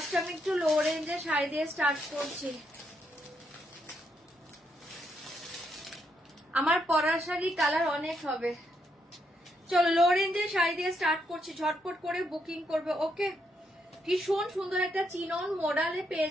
আমি একটু লো রেঞ্জের শাড়ি দিয়ে স্টার্ট করছি। আমার পরার শাড়ি কালার অনেক হবে। চলো লো রেঞ্জের শাড়ি দিয়ে স্টার্ট করছি, ঝটপট করে বুকিং করবে। ওকে, ভীষণ সুন্দর একটা চিনন মডেলে পেয়ে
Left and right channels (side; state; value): both; normal; correlation 0.77